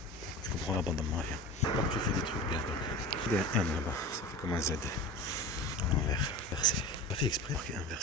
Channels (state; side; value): normal; both; correlation 0.33